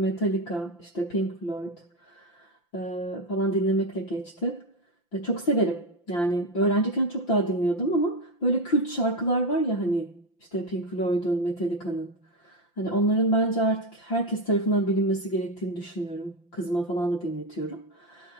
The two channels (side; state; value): right; late; 5.8 ms